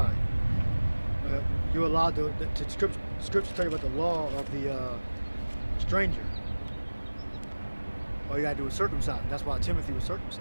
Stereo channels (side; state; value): both; inverted; correlation -1.00